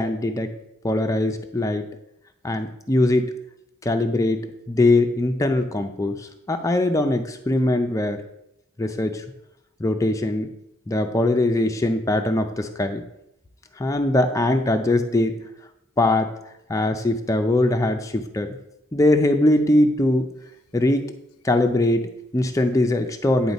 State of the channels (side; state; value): both; normal; correlation 0.76